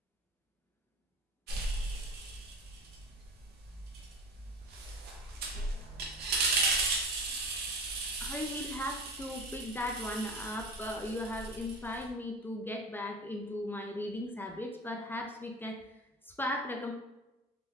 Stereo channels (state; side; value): normal; both; correlation 0.33